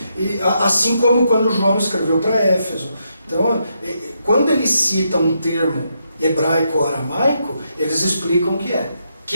E, assim como quando João escreveu para Éfeso. Então, quando eles citam um termo hebraico ou aramaico, eles explicam o que é.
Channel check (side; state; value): both; inverted; correlation -0.80